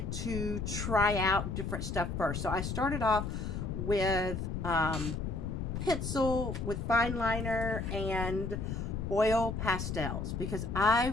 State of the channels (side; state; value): left; noise; rumble, 3 dB below the sound